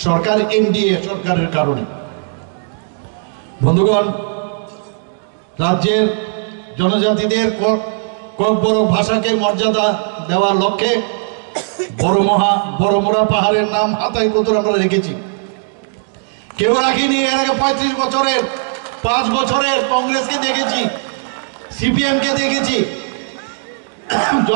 সরকার, এনডিএ সরকারের কারণে। বন্ধুগণ, রাজ্যের জনজাতিদের ককবরক ভাষাকে মর্যাদা দেওয়ার লক্ষ্যে বড়মোড়া পাহাড়ের নাম হাতায় কতুর আমরা রেখেছি। কেউ রাখিনি। এর আগে 35 বছরের 5 বছরের কংগ্রেসকে দেখেছি, সিপিএম কে দেখেছি।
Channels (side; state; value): left; silent; digital silence